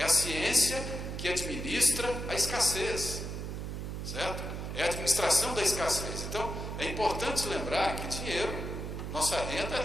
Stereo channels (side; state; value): right; noise; hum, 5 dB below the sound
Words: a ciência que administra a escassez, certo? É a administração da escassez. Então, é importante lembrar que dinheiro, nossa renda